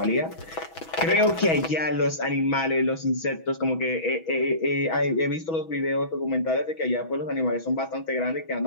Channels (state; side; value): late; right; 6.2 ms